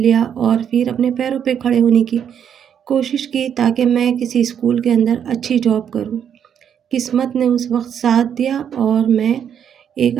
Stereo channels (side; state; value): left; quieter; 8.5 dB